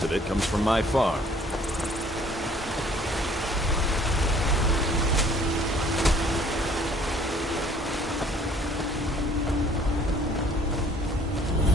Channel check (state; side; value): normal; both; correlation 0.56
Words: of it comes from my farm.